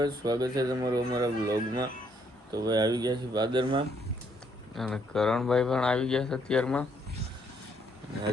સ્વાગત છે તમારું અમારા બ્લોગમાં. તો ભાઈ આવી ગયા છે પાદરમાં અને કરણભાઈ પણ આવી ગયા છે અત્યારમાં.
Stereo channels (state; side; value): normal; both; correlation 0.70